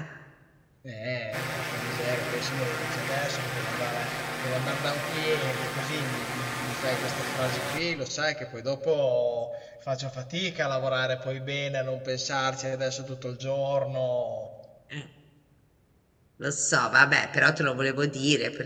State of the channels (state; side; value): identical; both; correlation 1.00